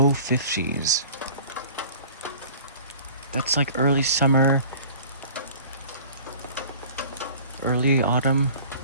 50s. That's like early summer, early autumn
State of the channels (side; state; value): both; inverted; correlation -0.45